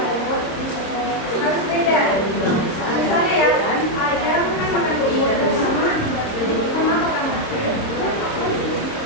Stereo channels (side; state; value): right; late; 26 ms